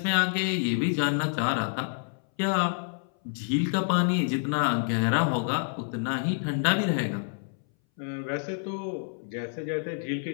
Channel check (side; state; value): right; silent; 59 dB below the other